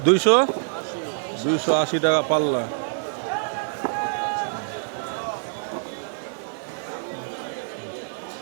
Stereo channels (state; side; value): silent; left; digital silence